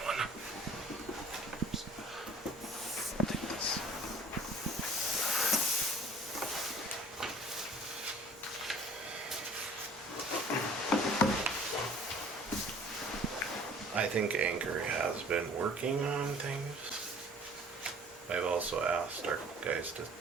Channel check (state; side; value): normal; both; correlation 0.50